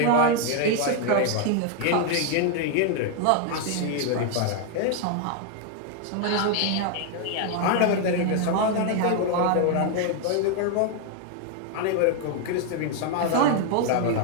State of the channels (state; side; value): different; both; correlation 0.00